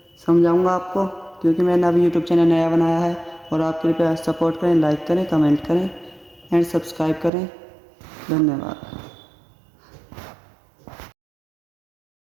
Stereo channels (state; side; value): drops out; left; at 7.3 s